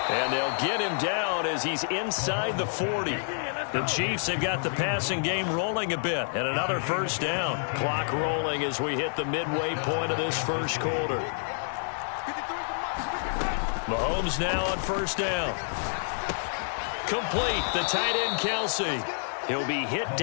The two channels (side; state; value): right; silent; 59 dB below the other